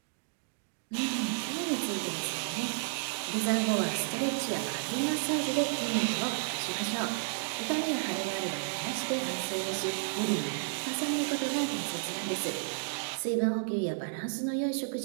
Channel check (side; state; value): left; silent; digital silence